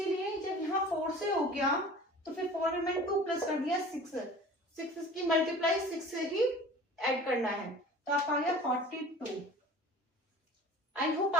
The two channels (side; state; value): both; normal; correlation 0.43